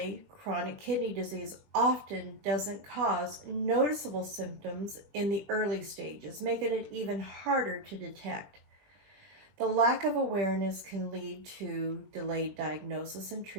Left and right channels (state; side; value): late; left; 21 ms